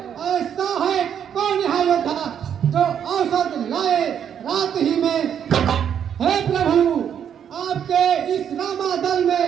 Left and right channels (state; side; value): quieter; left; 8.7 dB